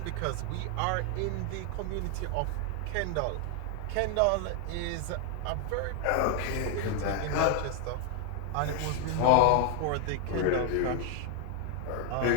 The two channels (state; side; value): different; both; correlation 0.00